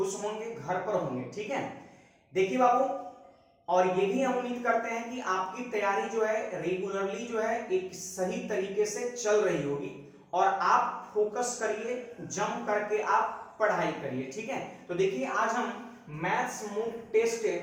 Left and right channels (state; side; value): identical; both; correlation 1.00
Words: होंगे, घर पर होंगे। ठीक है, देखिए बाबू, और ये भी हम उम्मीद करते हैं कि आपकी तैयारी जो है रेगुलरली जो है एक सही तरीके से चल रही होगी और आप फोकस करिए, जम करके आप पढ़ाई करिए। ठीक है, तो देखिए आज हम मैथ्स मूक टेस्ट